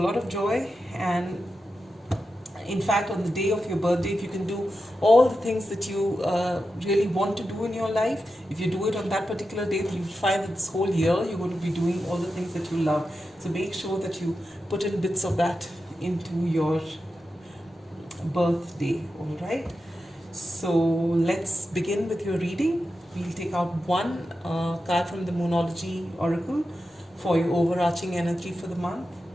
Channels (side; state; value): both; normal; correlation 0.90